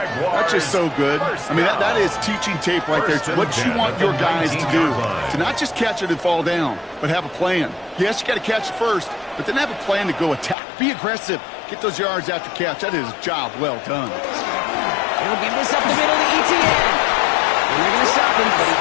That's just so good. I mean, that is teaching tape right there. It's what you want your guys to do. To not just catch it and fall down, but have a plan. Yes, you got to catch it first, but then have a plan to go attack. Be aggressive. Get those yards after catch. That is a job well done. He'll give this up the middle to ETN. And they're going to stop him, but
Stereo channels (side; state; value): right; drops out; at 10.6 s